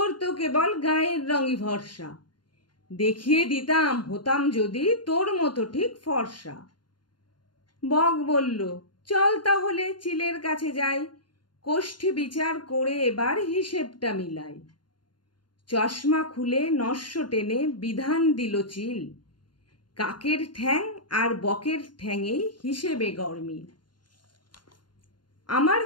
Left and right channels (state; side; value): late; right; 0.71 ms